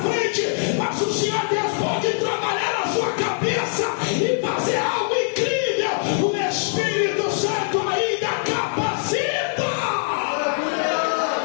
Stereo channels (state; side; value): silent; right; digital silence